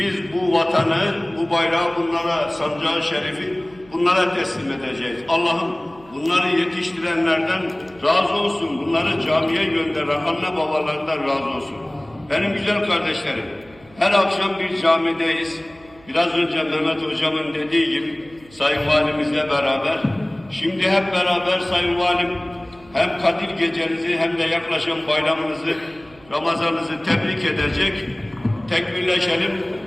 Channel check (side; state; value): right; noise; hum, 26 dB below the sound